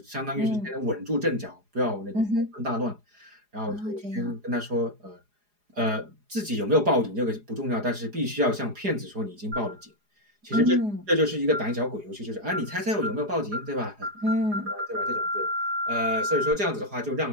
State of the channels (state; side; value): late; left; 4.8 ms